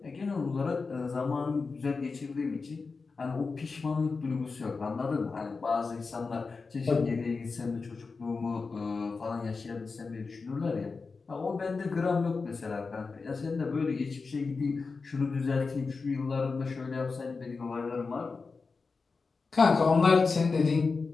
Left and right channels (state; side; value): quieter; right; 4.4 dB